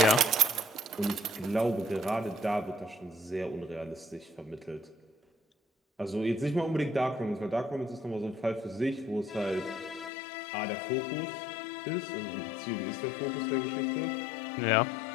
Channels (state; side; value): drops out; right; at 10.1 s